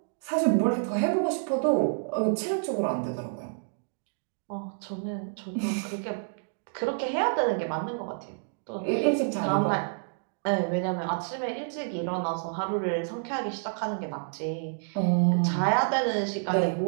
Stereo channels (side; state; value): left; silent; digital silence